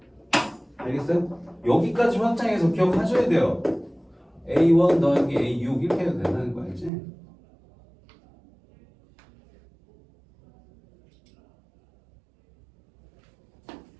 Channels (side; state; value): left; drops out; at 6.9 s